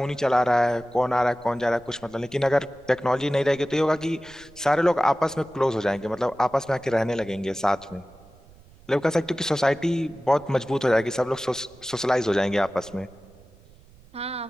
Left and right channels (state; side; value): noise; right; rumble, 25 dB below the sound